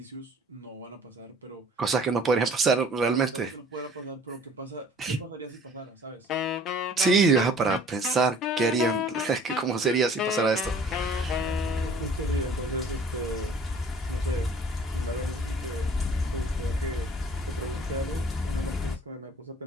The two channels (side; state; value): both; normal; correlation 0.52